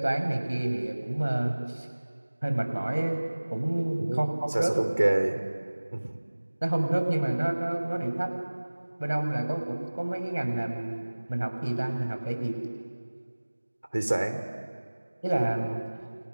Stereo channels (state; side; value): inverted; both; correlation -1.00